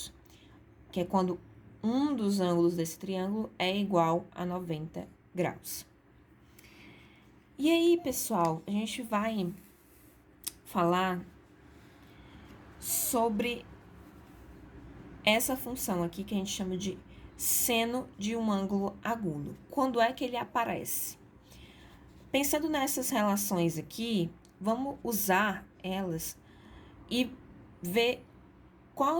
Que é quando um dos ângulos desse triângulo é igual a 90 graus. E aí, pessoal, a gente vai falar sobre essa função aqui que a gente chama de seno de um ângulo agudo. Quando é que ele aparece? Pensando nessas relações aqui, vamos usar elas e ver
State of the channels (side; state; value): both; identical; correlation 1.00